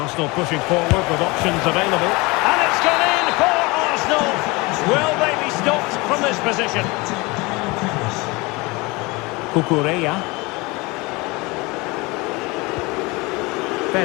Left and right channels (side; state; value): right; quieter; 24.7 dB